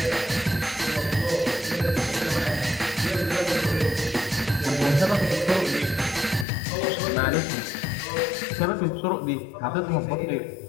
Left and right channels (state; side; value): drops out; right; at 6.5 s